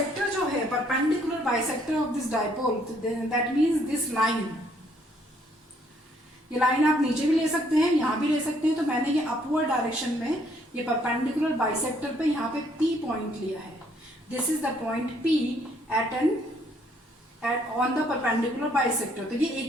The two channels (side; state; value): both; normal; correlation 0.66